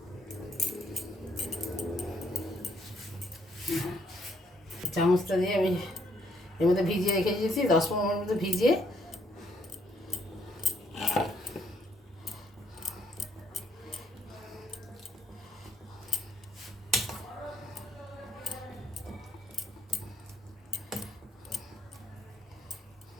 চামচটা দিয়ে আমি এর মধ্যে ভিজিয়ে রেখে দিয়েছি, 10-15 মিনিট মতো ভিজিয়ে।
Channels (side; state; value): both; normal; correlation 0.70